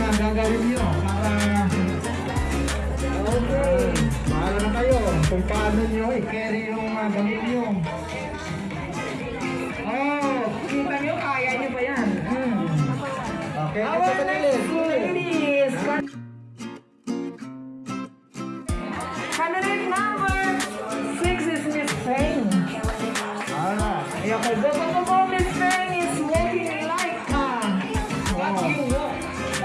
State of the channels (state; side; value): identical; both; correlation 1.00